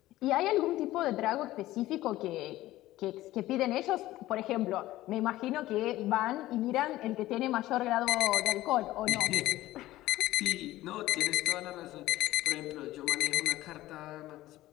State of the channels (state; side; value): quieter; right; 16.1 dB